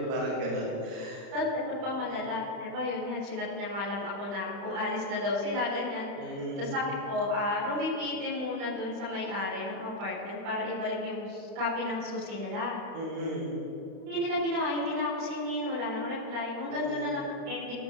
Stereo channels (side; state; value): left; late; 35 ms